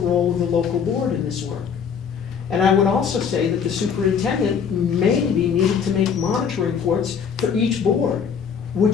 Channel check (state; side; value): quieter; right; 6.9 dB